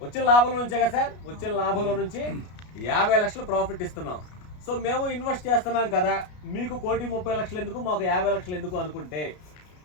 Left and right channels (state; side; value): late; right; 33 ms